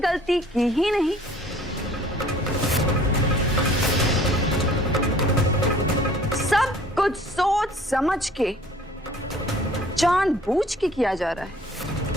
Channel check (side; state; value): both; normal; correlation 0.53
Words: की ही नहीं, सब कुछ सोच समझ के जानबूझ के किया जा रहा है।